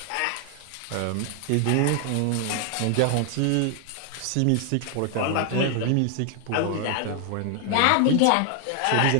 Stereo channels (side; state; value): both; different; correlation 0.00